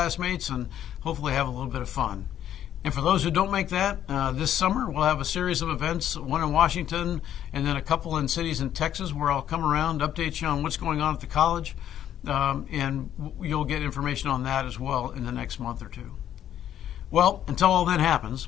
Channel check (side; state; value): right; quieter; 10.8 dB